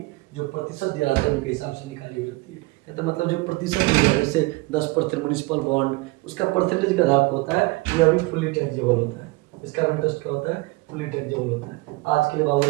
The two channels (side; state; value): left; quieter; 23.3 dB